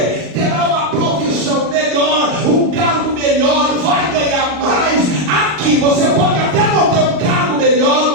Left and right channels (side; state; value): left; late; 40 ms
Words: Terá uma profissão melhor, um cargo melhor, vai ganhar mais. Aqui você pode até não ter um cargo melhor,